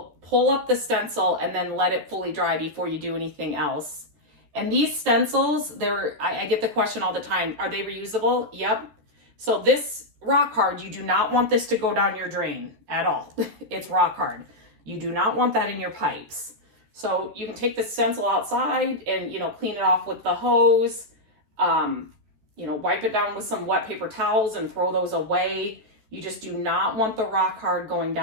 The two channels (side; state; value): left; late; 14 ms